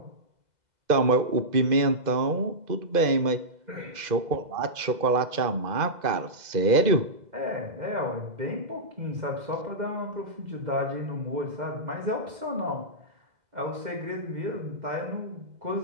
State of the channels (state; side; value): late; left; 2.0 ms